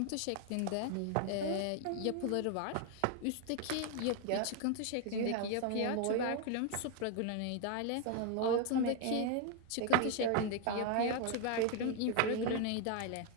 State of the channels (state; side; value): different; both; correlation 0.01